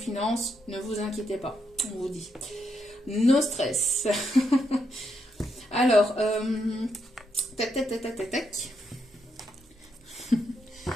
ne vous inquiétez pas, on vous dit. No stress. Alors, tac, tac, tac, tac, tac, tac.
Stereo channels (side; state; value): both; normal; correlation 0.79